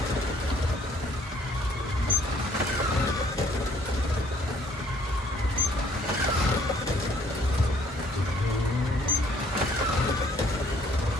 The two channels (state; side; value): normal; both; correlation 0.61